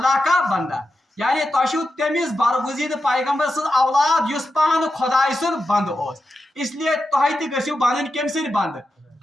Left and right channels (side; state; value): both; normal; correlation 0.89